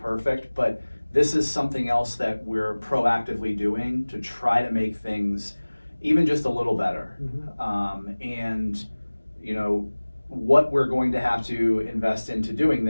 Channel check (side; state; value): both; inverted; correlation -1.00